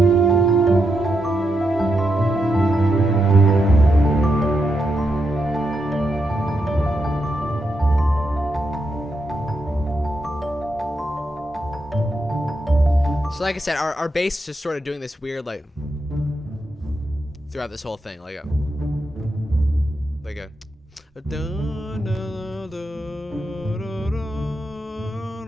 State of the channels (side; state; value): both; normal; correlation 0.84